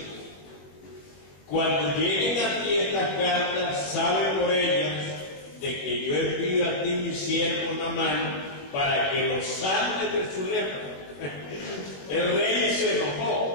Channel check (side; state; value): right; late; 21 ms